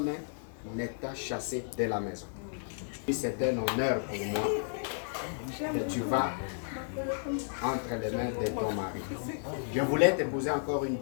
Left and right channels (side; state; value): right; silent; digital silence